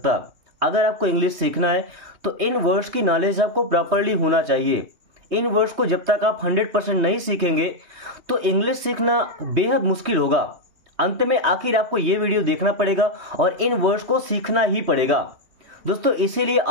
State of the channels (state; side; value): late; left; 3.2 ms